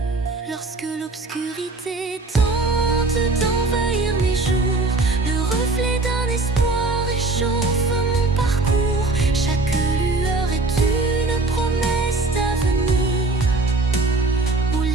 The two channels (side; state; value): left; quieter; 3.3 dB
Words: Lorsque l'obscurité tente d'envahir mes jours, le reflet d'un espoir réchauffe mon parcours. Chaque lueur est une promesse d'avenir, où